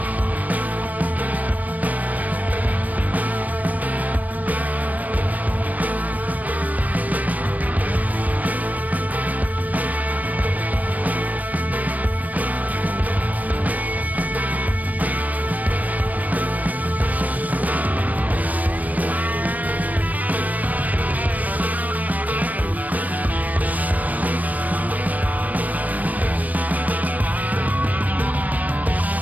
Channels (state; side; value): late; left; 0.075 ms